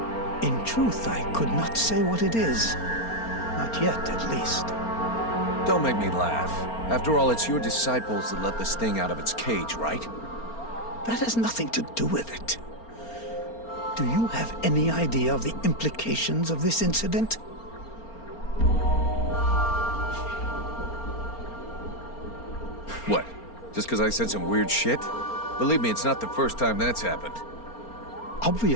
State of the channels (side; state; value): right; late; 4.3 ms